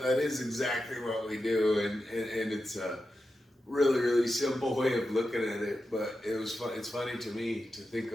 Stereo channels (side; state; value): both; normal; correlation 0.90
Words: that is exactly what we do, and it's a really, really simple way of looking at it. But it was fun. It's funny to me to think